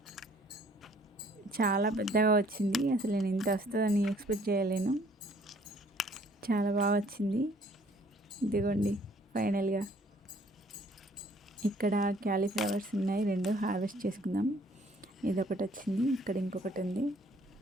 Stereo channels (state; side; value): normal; both; correlation 0.60